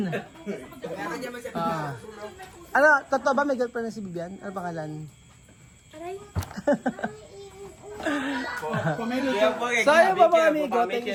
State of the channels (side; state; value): both; identical; correlation 1.00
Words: Ano, totoo ba may girlfriend na si Bibian? Ano pangalan? Aray. So ayun po mga amigo, thank